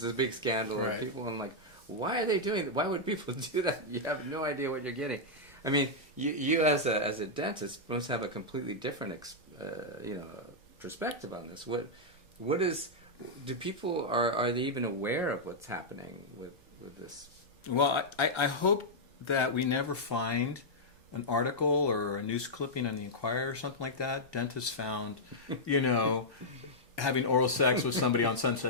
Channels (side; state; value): right; noise; rumble, 27 dB below the sound